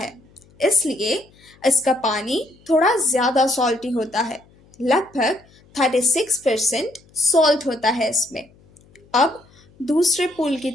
इसलिए इसका पानी थोड़ा ज़्यादा सॉल्टी होता है, लगभग 36% सॉल्ट होता है इसमें। अब दूसरे पूल की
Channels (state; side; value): noise; left; hum, 29 dB below the sound